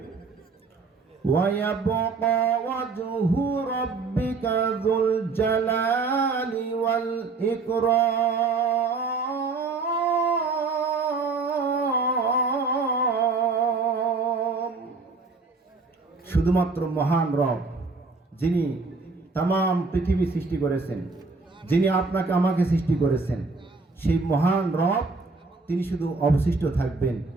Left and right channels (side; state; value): left; quieter; 4.1 dB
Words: ওয়ায়াবকা ওয়াজহু রাব্বিকা যুল জালালি ওয়াল ইকরাম। শুধুমাত্র মহান রব, যিনি তাম পৃথিবী সৃষ্টি করেছেন, যিনি আপনাকে আমাকে সৃষ্টি করেছেন, সেই মহান রব তিনি শুধু অবশিষ্ট থাকবেন,